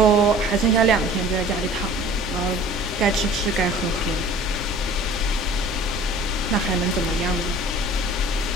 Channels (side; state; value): both; normal; correlation 0.46